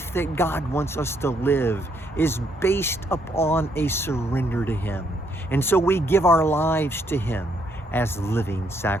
that God wants us to live is based upon a surrender to Him. And so we give our lives to Him as living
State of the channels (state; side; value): normal; both; correlation 0.72